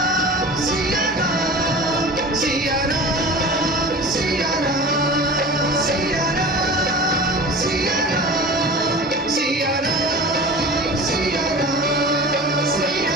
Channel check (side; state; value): both; normal; correlation 0.36